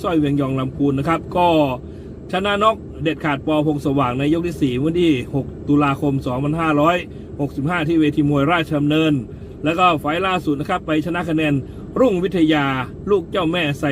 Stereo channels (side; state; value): both; identical; correlation 1.00